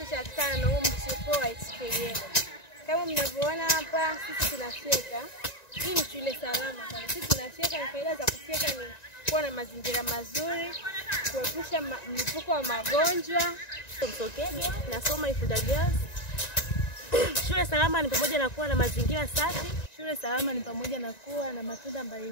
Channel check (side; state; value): right; late; 1.9 ms